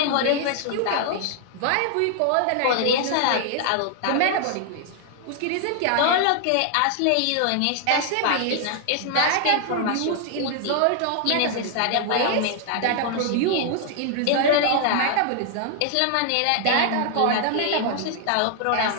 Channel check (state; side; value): different; both; correlation 0.00